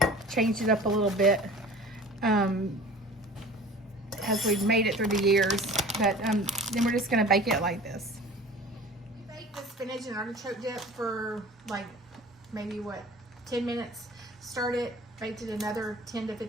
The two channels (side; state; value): both; normal; correlation 0.42